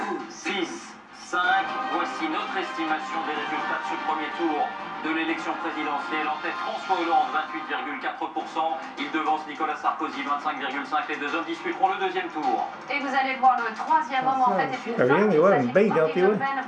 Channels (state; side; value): identical; both; correlation 1.00